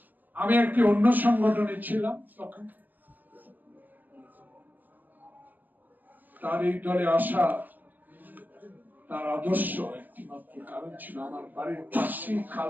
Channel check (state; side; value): late; left; 0.087 ms